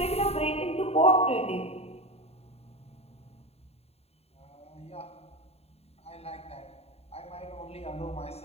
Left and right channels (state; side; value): late; right; 0.30 ms